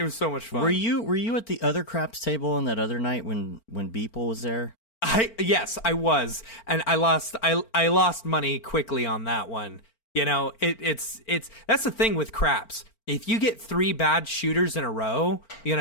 was so much fun. Were you at the other craps table on that other night when Beeple was there? Yes, I was, and I lost money quickly on that one. It's that's the thing with craps. If you get 3 bad shooters in a row,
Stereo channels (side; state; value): right; late; 4.4 ms